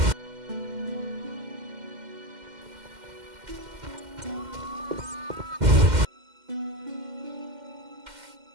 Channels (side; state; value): left; late; 2.1 ms